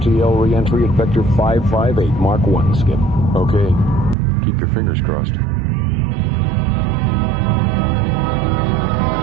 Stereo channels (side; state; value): left; drops out; at 4.2 s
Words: re-entry at Vector 558, Mark 1, Skip. Okay. Keep your fingers crossed.